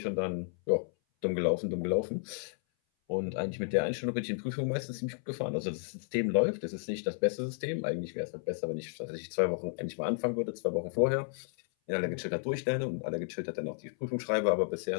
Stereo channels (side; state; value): right; silent; 56 dB below the other